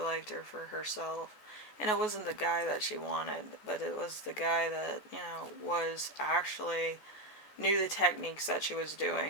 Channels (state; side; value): late; right; 14 ms